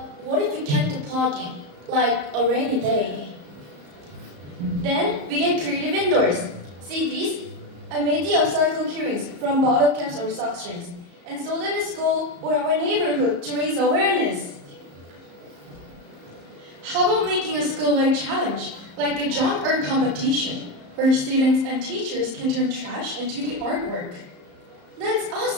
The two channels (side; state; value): left; late; 34 ms